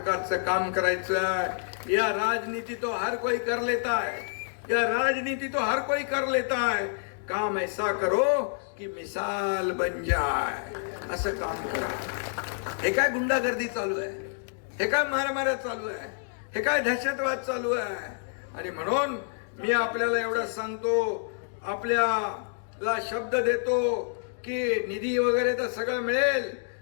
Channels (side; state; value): right; silent; digital silence